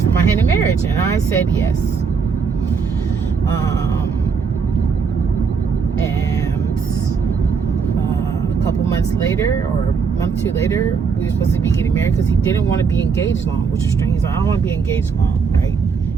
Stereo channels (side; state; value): left; quieter; 5.6 dB